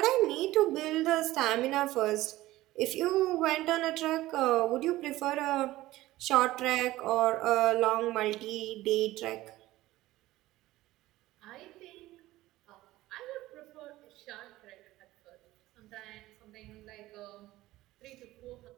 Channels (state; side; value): quieter; left; 16.8 dB